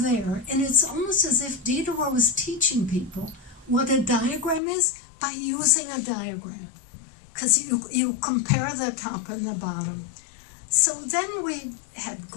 And it's almost as if Diderot was teaching people what a diagram is by using a diagram, because you compare the top and the bottom. So then we had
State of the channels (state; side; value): drops out; right; at 4.6 s